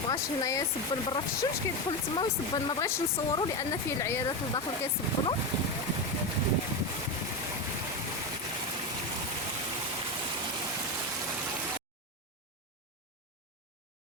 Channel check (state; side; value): normal; both; correlation 0.15